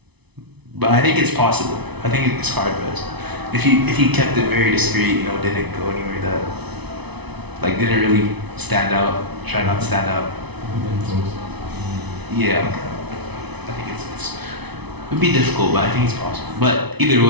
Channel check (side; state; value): left; late; 0.99 ms